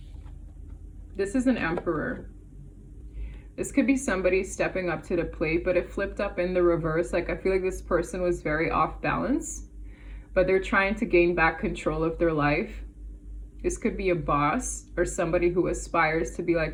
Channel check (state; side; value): identical; both; correlation 1.00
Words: This is an Emperor. This could be somebody stepping up to the plate, but it flipped up in the reverse. Like I feel like this person was very off balance, but they're trying to gain back control of their life. This could be a boss or somebody who aspires to be